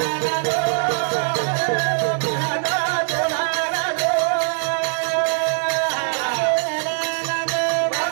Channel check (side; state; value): left; silent; digital silence